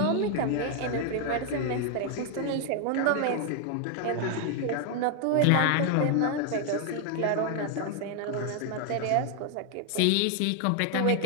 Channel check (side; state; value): both; different; correlation 0.00